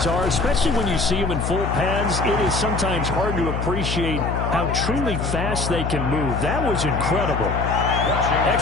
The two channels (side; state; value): left; noise; hum, 2 dB below the sound